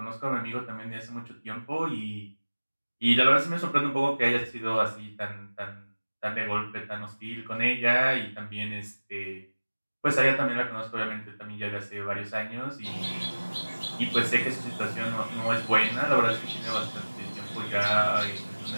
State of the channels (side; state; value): both; inverted; correlation -1.00